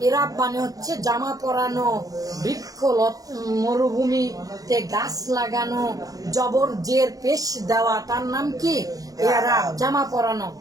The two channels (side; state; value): left; late; 0.17 ms